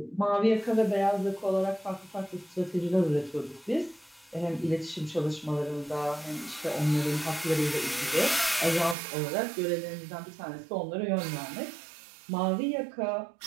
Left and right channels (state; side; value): drops out; left; at 9.0 s